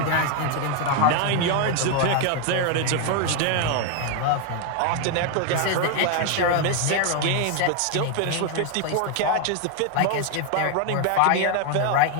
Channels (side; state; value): both; different; correlation 0.01